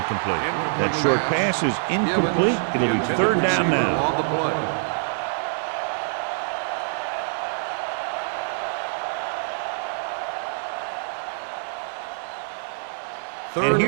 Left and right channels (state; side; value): silent; left; 59 dB below the other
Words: That short pass is incomplete. It'll be 3rd down now. On the play. And